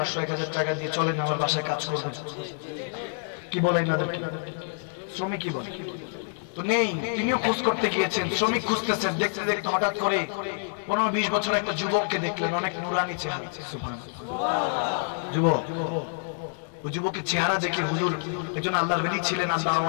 টাকা দিয়ে চলেন আমার বাসায় কাজ করবেন, কি বলে এনাদেরকে? শ্রমিকই বলে। তো নেই, তিনিও খোঁজ করতে গিয়েছেন, শ্রমিক খুঁজতেছেন, দেখতে দেখতে হঠাৎ করে 15-20 বছর একটা যুবককে দেখলেন, অনেক নুরানি চেহারা। যুবক, ওই যুবকের চেহারা দেখে হুজুর, একজন আল্লাহর ওলি ছিলেন,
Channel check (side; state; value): right; silent; digital silence